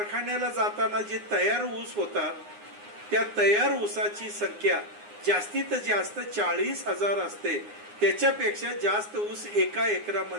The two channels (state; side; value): late; left; 9.7 ms